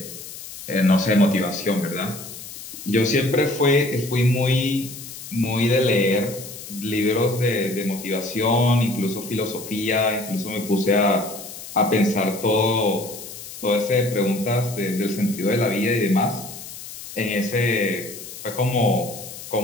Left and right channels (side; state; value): left; noise; hiss, 13 dB below the sound